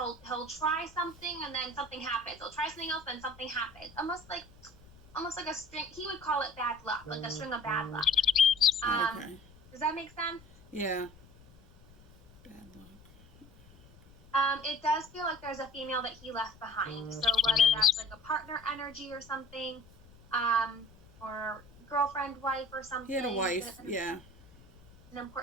try something and then something happens. He'll try something else and something happens. Almost like a string. He would call it bad luck, like a string of bad luck. Okay. Does that make sense? Yeah. Bad luck. It does feel like there's a female that he left behind. So whether that's like a partner energy or something, or girlfriend, wife, or something. He had a wife. Yeah. An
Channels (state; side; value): noise; left; rumble, 24 dB below the sound